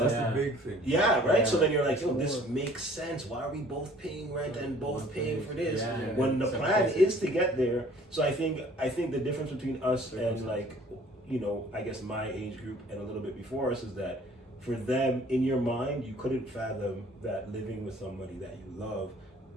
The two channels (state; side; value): normal; both; correlation 0.54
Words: That's the big thing. Yeah, right? So then you're like, this makes sense. Why are we both paying rent and both paying for this? When the plan is to get there. So I think the difference between us and like, I guess my age group and a little bit before us is that for them, in your mind, you couldn't fathom that living with somebody that you love